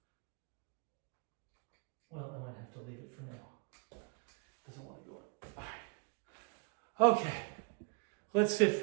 Well, I might have to leave it for now. Doesn't want to go in. All right. Okay. Let's sit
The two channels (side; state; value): left; quieter; 37.5 dB